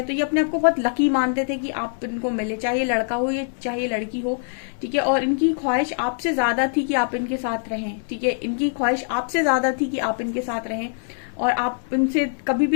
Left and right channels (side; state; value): right; silent; 63 dB below the other